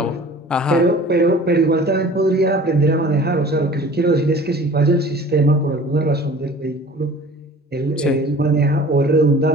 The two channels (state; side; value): normal; both; correlation 0.45